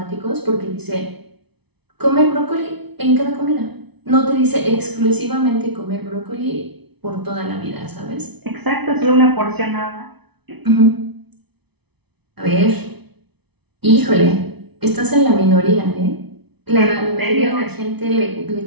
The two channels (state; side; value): late; left; 0.99 ms